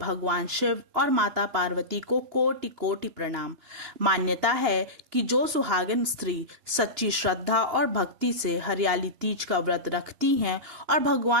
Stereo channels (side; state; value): left; late; 2.9 ms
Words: शिव और माता पार्वती को कोटि कोटि प्रणाम। मान्यता है कि जो सुहागिन स्त्री सच्ची श्रद्धा और भक्ति से हरियाली तीज का व्रत रखती हैं और